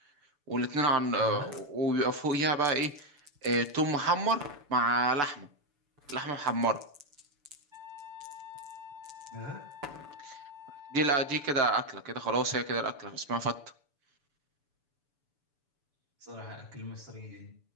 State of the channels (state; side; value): late; left; 7.0 ms